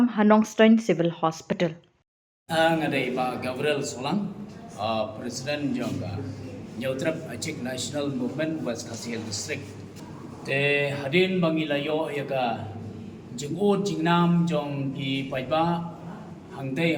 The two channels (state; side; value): identical; both; correlation 1.00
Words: hanong Stein Civil Hospital. Ngadai Pak Gabriel Soalang, Presiden Jongga Neutrep Achik National Movement West Khasi Hills District. Te hadin bangilayo yaga jingud jingnam jong ki paiba